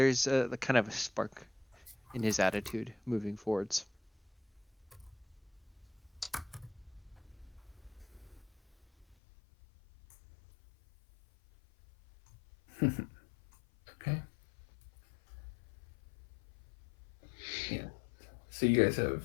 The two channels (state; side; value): drops out; right; at 9.2 s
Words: a kind of a spark in his attitude moving forwards. Okay. Yeah. So you